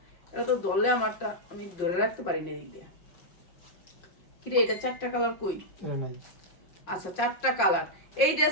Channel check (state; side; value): late; right; 5.6 ms